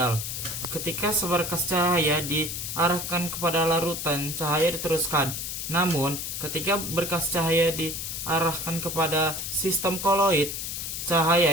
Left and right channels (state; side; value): noise; left; hiss, 5 dB below the sound